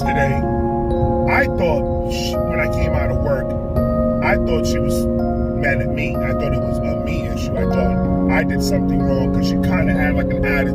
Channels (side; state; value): both; identical; correlation 1.00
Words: I thought when I came out of work, I thought she was mad at me. I thought it was a me issue. I thought I did something wrong because she kind of had like an